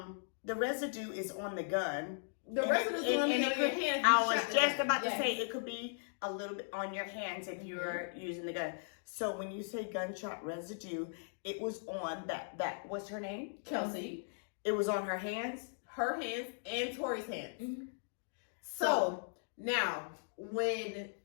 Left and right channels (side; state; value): right; silent; digital silence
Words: The residue is on the gun. The And residue is it- on and your it could- hand. I was just about to Yes. say it could be a little bit on your hands if you're using the gun. So when you say gunshot residue, it was on that what's her name? Kelsey, It was on her hands. her hands, and Tory's hands. Mhm. So now, when